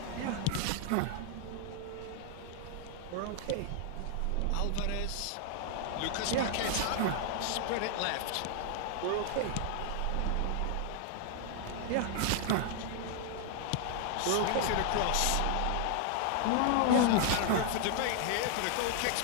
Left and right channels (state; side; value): different; both; correlation 0.00